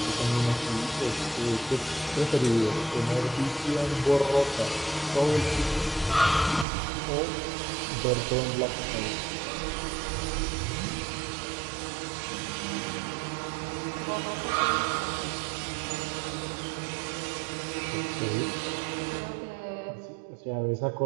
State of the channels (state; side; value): drops out; left; at 6.7 s